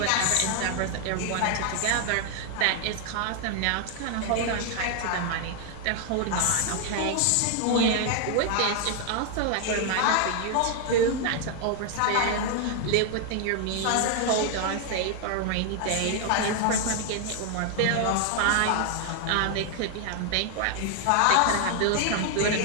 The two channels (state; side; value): different; both; correlation 0.00